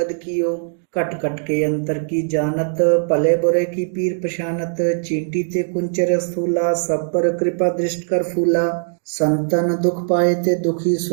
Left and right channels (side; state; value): left; silent; digital silence